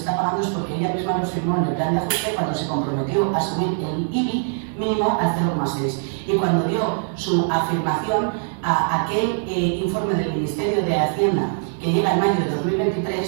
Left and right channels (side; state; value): left; silent; 64 dB below the other